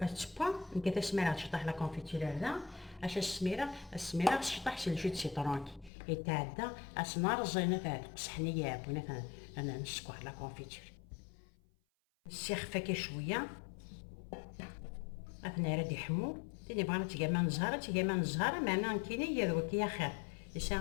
نكتا سميرة تشطح لا كونفيتير هذا اش السميرة تشطح سي الجو سيترونكي يتعدى اسنار زينة تاع قصحنية بونا انا نسكو لا كونفيتير السيخ فاكي شوية اثنا راه يحمو تاني بغينا تيقاما نزهرة معنا كيني يا ذوك يا خير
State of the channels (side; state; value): right; drops out; at 5.9 s